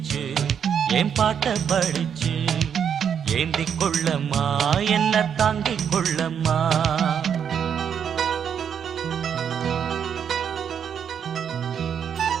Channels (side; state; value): left; quieter; 7.9 dB